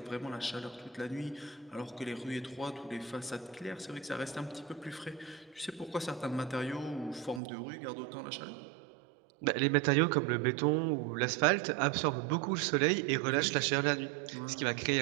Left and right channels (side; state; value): left; drops out; at 7.4 s